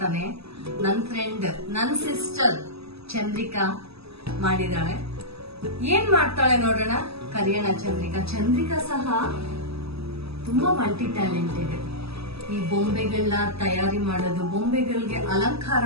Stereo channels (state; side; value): late; left; 0.78 ms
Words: ನನ್ನ ಫ್ರೆಂಡ್, ನನ್ನ ಸಿಸ್ಟರ್ ಚಂದ್ರಿಕಾ ಮಾಡಿದಾಳೆ. ಏನ್ ಮಾಡ್ತಾಳೆ ನೋಡೋಣ, ಕರಿಯೋಣ ಚಂದ್ರಿಕಾ. ಚಂದ್ರಿಕಾ ಸಹ ತುಂಬಾ ಮಲ್ಟಿ ಟ್ಯಾಲೆಂಟೆಡ್. ಈ ಬೊಂಬೆಗಳನ್ನ ತಯಾರಿ ಮಾಡೋದು, ಬೊಂಬೆಗಳಿಗೆ ಅಲಂಕಾರ